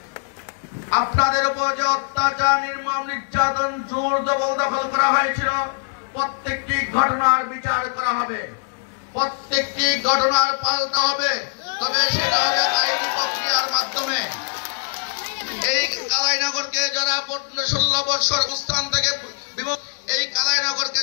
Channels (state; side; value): silent; right; digital silence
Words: আপনাদের উপর যে অত্যাচার, নির্মম নির্যাতন, জোর জবরদখল করা হয়েছিল, প্রত্যেকটি ঘটনার বিচার করা হবে, প্রত্যেকটি ঘটনার পাল্টা হবে, তবে সেটা হবে আইনি প্রক্রিয়ার মাধ্যমে। এই কালাইনগরকে যারা 15-16 বছর অবস্থান থেকে এই কালাইনগরকে